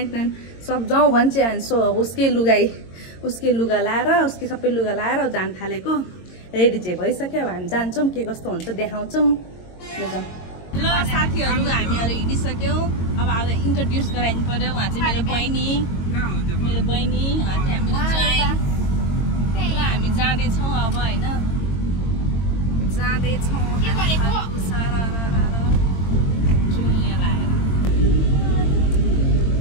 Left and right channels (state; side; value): late; right; 22 ms